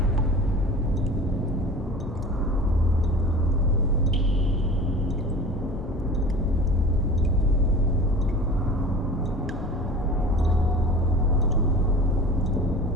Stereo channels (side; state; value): both; normal; correlation 0.39